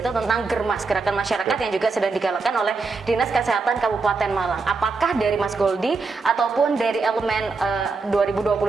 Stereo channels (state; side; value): quieter; left; 4.2 dB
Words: tentang Germas, gerakan masyarakat yang juga sedang digalakan oleh Dinas Kesehatan Kabupaten Malang. Apakah dari Mas Goldi ataupun dari Elemen